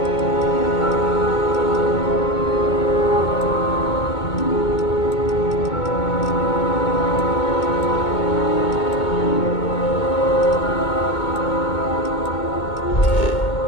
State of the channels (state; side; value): late; right; 2.2 ms